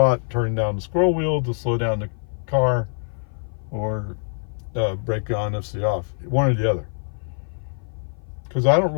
turning down the scroll wheel to slow down the car, or break on FSD off, one or the other. Because I don't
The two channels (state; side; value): silent; right; 55 dB below the other